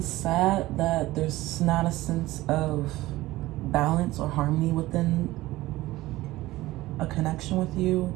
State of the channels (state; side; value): quieter; left; 17.6 dB